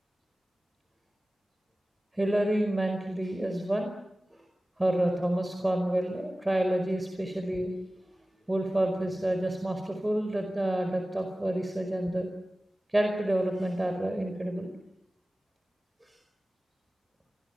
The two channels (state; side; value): normal; both; correlation 0.96